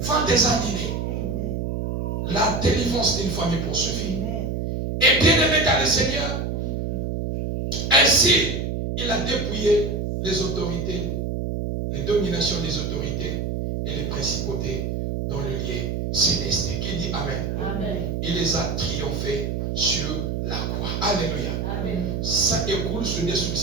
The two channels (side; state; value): right; noise; hum, 2 dB below the sound